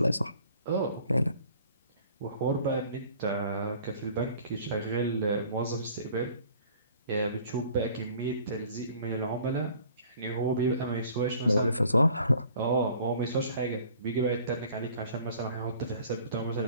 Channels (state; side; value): inverted; both; correlation -0.53